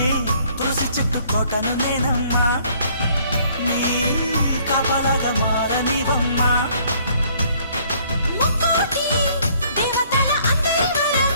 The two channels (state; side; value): inverted; both; correlation -0.61